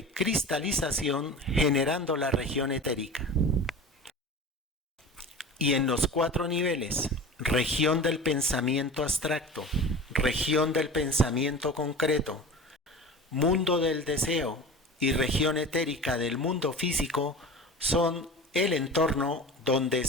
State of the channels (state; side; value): normal; both; correlation 0.35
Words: cristalización generando la región etérica. Y en los 4 niveles, región del pensamiento abstracto, región del pensamiento concreto, mundo del deseo y región etérica del mundo físico, son el entorno donde